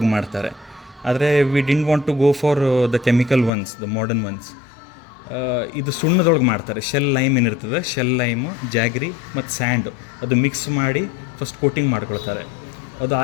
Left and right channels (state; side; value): drops out; right; at 3.5 s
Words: ಮಾಡ್ತಾರೆ, ಆದರೆ we didn't want to go for the chemical ones, the modern ones. ಇದು ಸುಣ್ಣದೊಳಗೆ ಮಾಡ್ತಾರೆ. ಶೆಲ್ ಲೈಮ್ ಏನಿರ್ತದೆ, ಶೆಲ್ ಲೈಮು, ಜಾಗ್ರಿ ಮತ್ತು ಸ್ಯಾಂಡು ಅದು ಮಿಕ್ಸ್ ಮಾಡಿ ಫಸ್ಟ್ ಕೋಟಿಂಗ್ ಮಾಡ್ಕೊಳ್ತಾರೆ. ಅದು